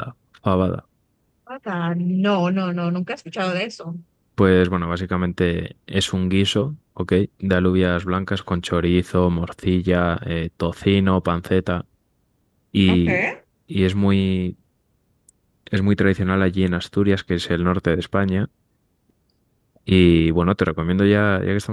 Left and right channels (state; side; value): identical; both; correlation 1.00